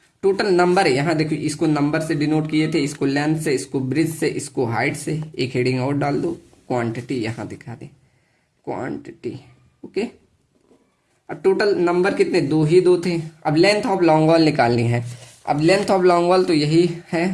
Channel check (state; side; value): identical; both; correlation 1.00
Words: Total number है, यहाँ देखो इसको नंबर से डिनोट किए थे, इसको लेंथ से, इसको ब्रिज से, इसको हाइट से। एक हेडिंग और डाल दो, क्वांटिटी यहाँ दिखा दे, क्वांटिटी। ओके, अब टोटल नंबर कितने, दो ही दो थे। अब लेंथ ऑफ लॉन्ग वॉल निकालनी है। अब लेंथ ऑफ लॉन्ग वॉल तो यही